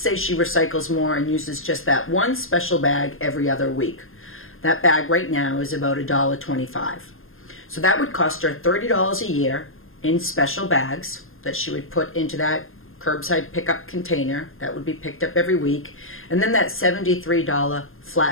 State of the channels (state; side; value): late; right; 0.60 ms